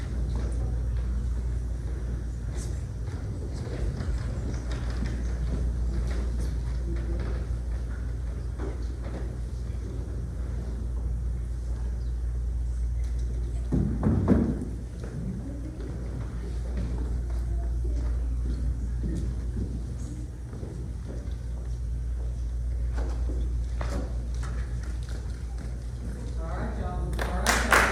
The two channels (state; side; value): identical; both; correlation 1.00